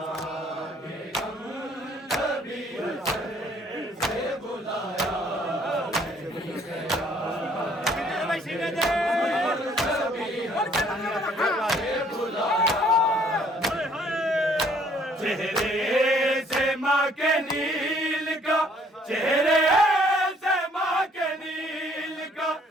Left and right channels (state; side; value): normal; both; correlation 0.62